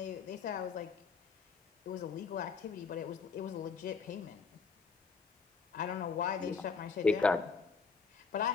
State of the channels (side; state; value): right; quieter; 5.3 dB